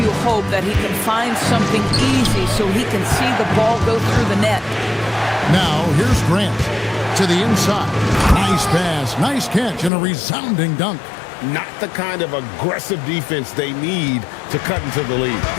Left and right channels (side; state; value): right; drops out; at 9.9 s